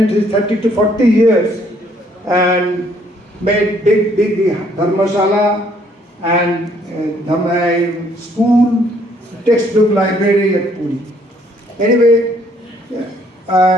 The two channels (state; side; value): normal; both; correlation 0.65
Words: his 30 to 40 years and made big dharmasala and school, textbook library at Puri. Anyway,